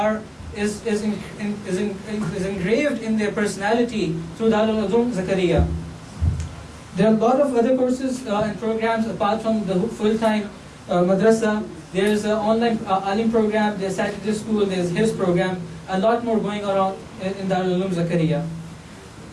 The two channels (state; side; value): identical; both; correlation 1.00